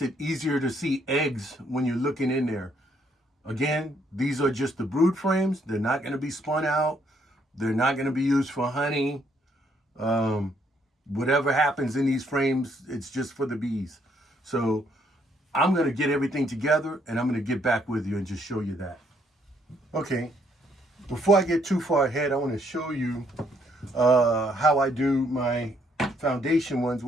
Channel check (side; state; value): both; normal; correlation 0.70